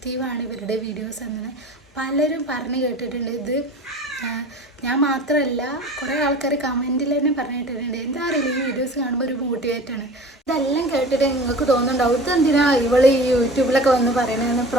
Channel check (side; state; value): both; normal; correlation 0.39